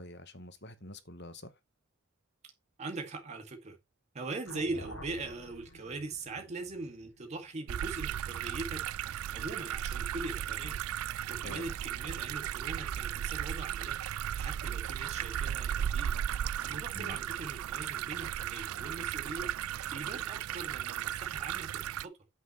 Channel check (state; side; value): quieter; left; 7.1 dB